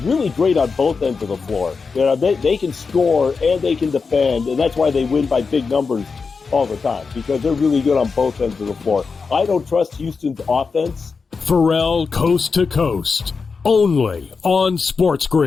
really great on both ends of the floor. They can score and they can defend, and that's why they win by big numbers all the time, because they're really good on both ends of the floor. I don't trust Houston's offense. Pharrell coast to coast, only on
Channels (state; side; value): quieter; right; 4.9 dB